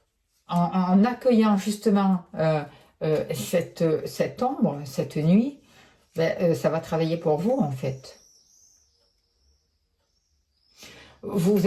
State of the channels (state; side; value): identical; both; correlation 1.00